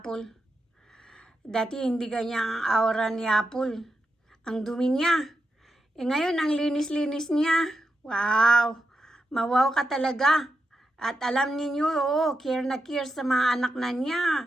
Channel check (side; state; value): both; normal; correlation 0.87